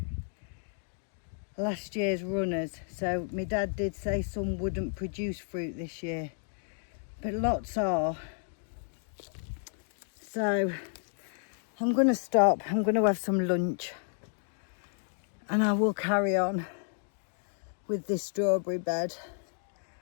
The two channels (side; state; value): right; silent; digital silence